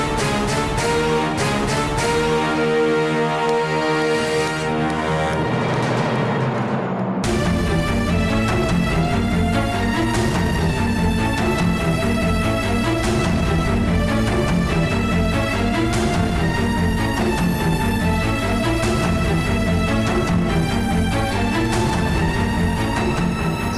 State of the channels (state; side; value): identical; both; correlation 1.00